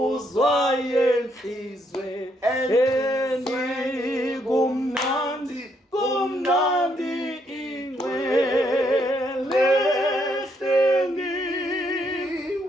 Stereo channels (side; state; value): both; normal; correlation 0.74